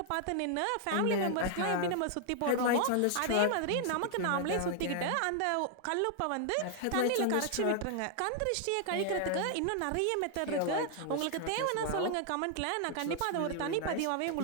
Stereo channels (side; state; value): both; different; correlation 0.00